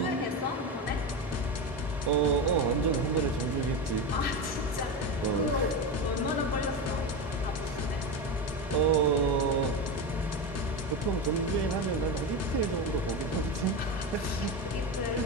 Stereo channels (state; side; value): normal; both; correlation 0.18